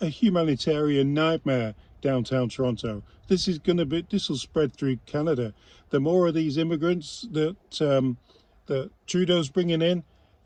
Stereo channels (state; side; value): identical; both; correlation 1.00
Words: a humanitarian nightmare, downtown Toronto. This will spread through Canada. The more of these immigrants that Trudeau's bringing in,